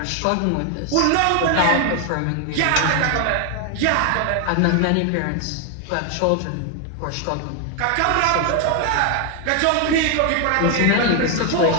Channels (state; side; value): different; both; correlation 0.01